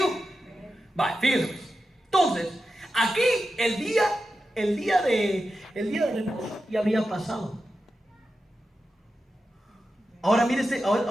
Vale, fíjense. Entonces, aquí el día de reposo ya había pasado. Ahora mire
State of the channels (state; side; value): normal; both; correlation 0.91